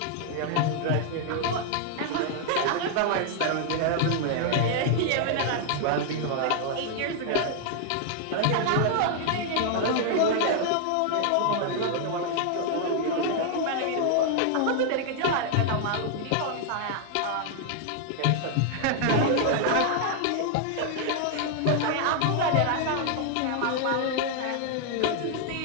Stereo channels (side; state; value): both; different; correlation 0.00